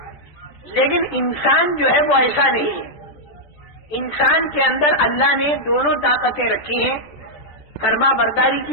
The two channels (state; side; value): late; right; 14 ms